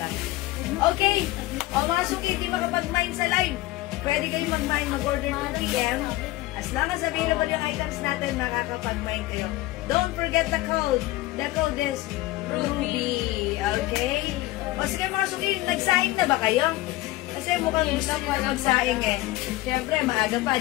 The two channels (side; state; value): right; quieter; 18.2 dB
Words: lang. Okay. O mga suki, hindi makapag-mine sa live. Pwede kayo mag-mine, mag-order 2 p.m. As long as available yung items natin, makakapag-mine kayo. Don't forget the code. The code is Ruby. Okay? O sige mga suki, nagsaing na ba kayo? Kasi mukhang gusto ko magsaing eh. Siyempre, maaga pa,